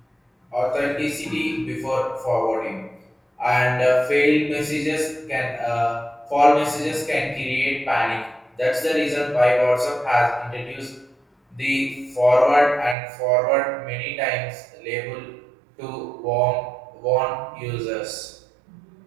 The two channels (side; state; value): left; drops out; at 13.0 s